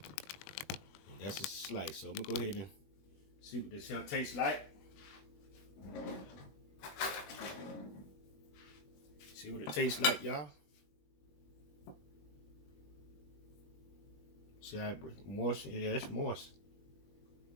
And that's a slice. So I'm gonna go ahead and see what this here tastes like. See what it tastes like, y'all. See how moist? Yeah, it's moist.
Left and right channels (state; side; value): late; right; 21 ms